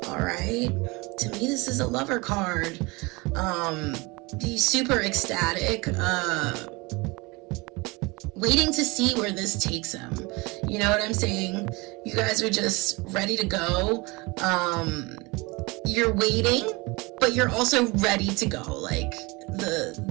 All right, to me this is a lover card. Be super ecstatic, waiting to see where this takes him. You know what I'm saying? You guys are just ready to go. You're waiting, but you're also ready to go. Like,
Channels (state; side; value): quieter; left; 25.3 dB